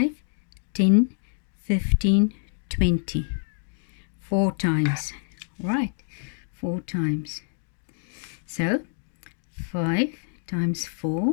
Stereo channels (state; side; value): silent; right; digital silence